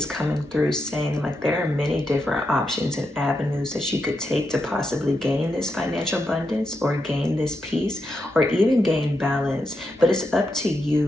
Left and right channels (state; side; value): normal; both; correlation 0.84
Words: coming through saying like there are many different options and avenues that you could take to possibly gain this financial abundance or gain this peace or even gain balance, but it's up to